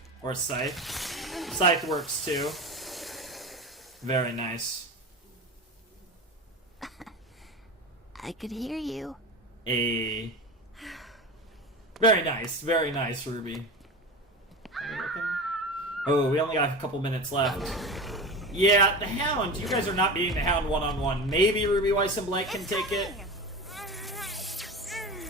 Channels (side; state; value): both; normal; correlation 0.27